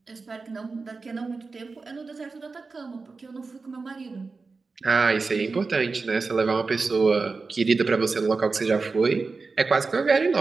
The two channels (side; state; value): left; quieter; 4.2 dB